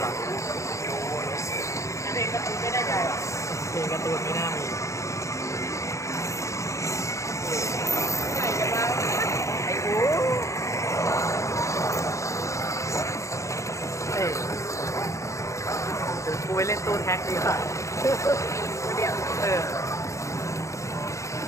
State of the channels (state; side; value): late; right; 0.15 ms